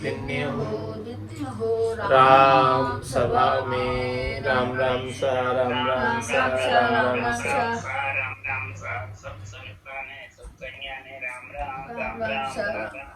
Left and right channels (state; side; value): identical; both; correlation 1.00